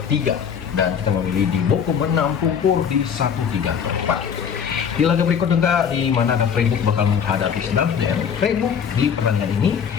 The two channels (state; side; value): quieter; right; 7.4 dB